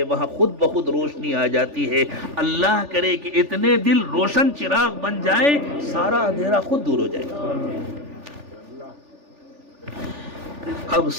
وہاں خود بخود روشنی آ جاتی ہے. اللہ کرے کہ اتنے دل روشن چراغ بن جائے، سارا اندھیرا خود دور ہو جائے گا. اب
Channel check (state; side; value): late; left; 3.4 ms